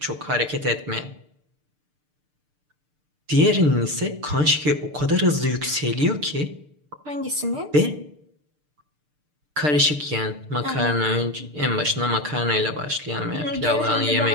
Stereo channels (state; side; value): late; left; 6.7 ms